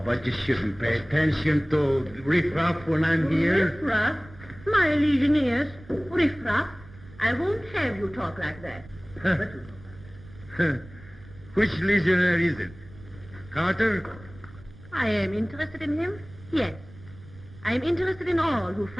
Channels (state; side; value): noise; right; rumble, 20 dB below the sound